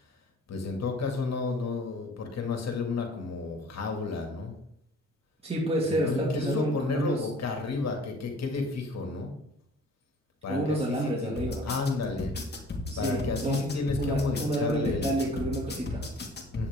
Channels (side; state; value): both; normal; correlation 0.50